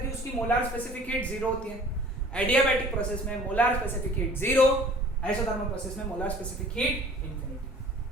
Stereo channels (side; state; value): both; normal; correlation 0.49